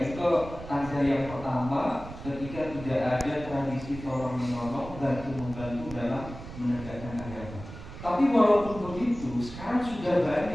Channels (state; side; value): noise; right; rumble, 13 dB below the sound